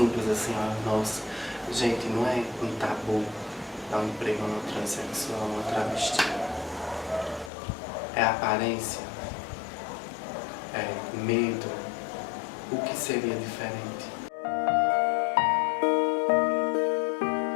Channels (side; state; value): right; drops out; at 7.5 s